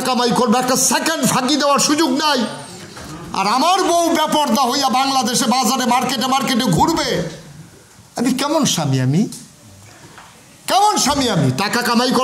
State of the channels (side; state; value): both; identical; correlation 1.00